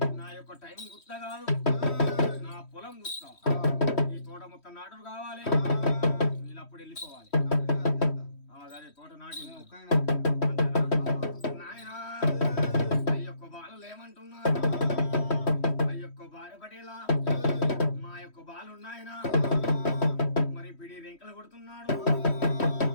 నా యొక్క టైం గుర్త కాదు, నా పొలం గుర్త. ఈ తోట మొత్తం నాటుడు కావాలి, వీళ్ళు అప్పుడు వెళ్ళిపోవాలి. అదే తోట నాటి నాయన అయ్యొక్క బాలు ఏమంటున్నారు, అయ్యొక్క భార్య పటేలా మా యొక్క బాలు నాయన మరి పిడి రెంకలు కొడుతున్నాడు.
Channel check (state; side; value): late; right; 3.1 ms